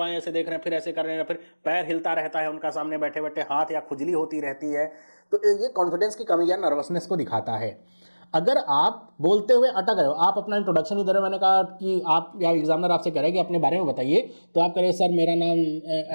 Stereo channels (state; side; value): inverted; both; correlation -1.00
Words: ऐसे देख रहे हैं, फिर ऐसे कर रहे हैं, फिर पैर हिलता रहता है उनका सामने बैठे बैठे, हाथ या खुजली होती रहती है। तो ये कॉन्फिडेंस की कमी या नर्वसनेस को दिखाता है। अगर आप बोलते हुए अटक रहे हो, आप अपना इंट्रोडक्शन ही दे रहे हो, मैंने कहा कि आप या एग्जामिनर आपसे कह रहे हैं कि अपने बारे में बताइए, तो आप कह रहे सर मेरा नाम